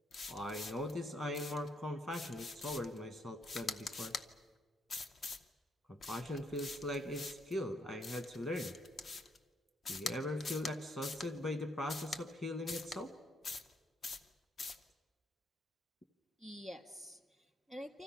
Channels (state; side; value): normal; both; correlation 0.72